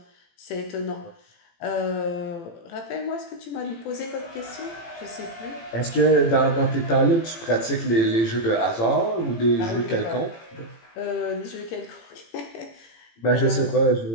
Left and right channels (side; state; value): right; late; 18 ms